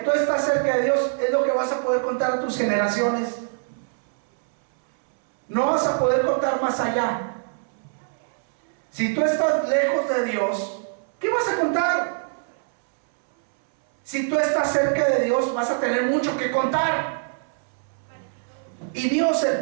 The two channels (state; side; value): silent; left; 63 dB below the other